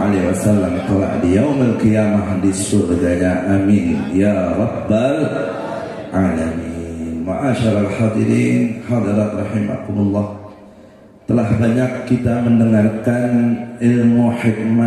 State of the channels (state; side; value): identical; both; correlation 1.00